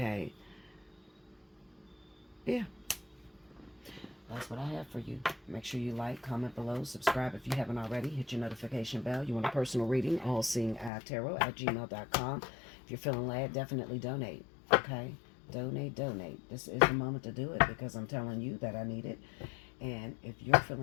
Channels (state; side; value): drops out; right; at 10.9 s